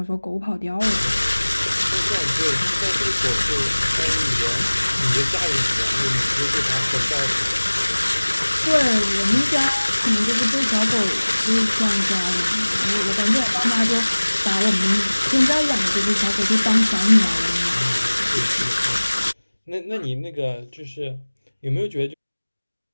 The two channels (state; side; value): inverted; both; correlation -1.00